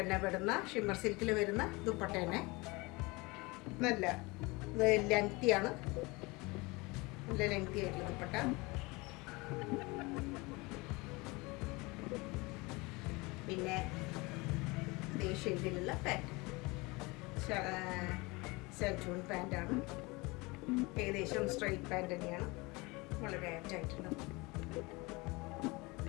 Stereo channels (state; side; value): quieter; right; 24.8 dB